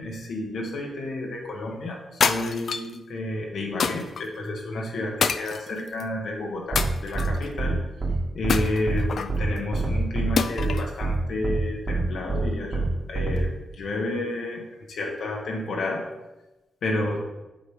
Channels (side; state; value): both; normal; correlation 0.81